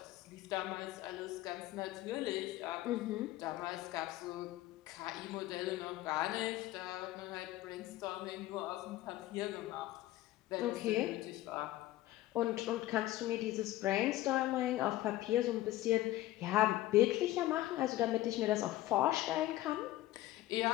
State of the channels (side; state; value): right; quieter; 15.9 dB